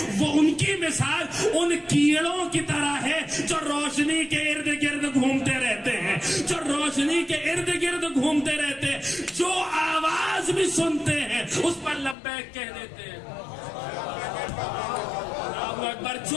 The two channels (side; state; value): right; drops out; at 12.2 s